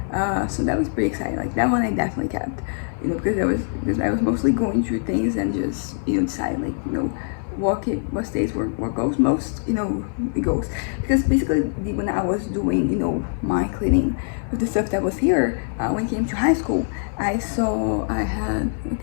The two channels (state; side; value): silent; right; 56 dB below the other